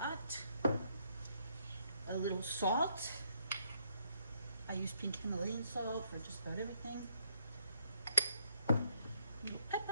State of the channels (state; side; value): inverted; both; correlation -0.70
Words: lot. A little salt. I use pink Himalayan salt for just about everything.